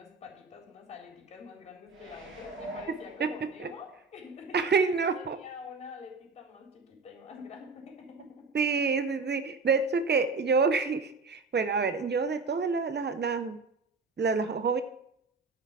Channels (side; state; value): left; quieter; 4.2 dB